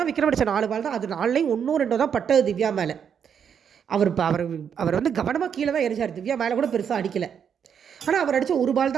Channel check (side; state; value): left; quieter; 7.7 dB